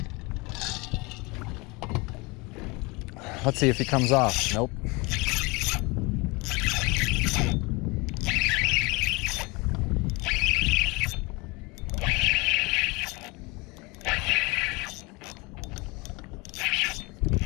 Let's see if he comes off. Nope.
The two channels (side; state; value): right; quieter; 26.1 dB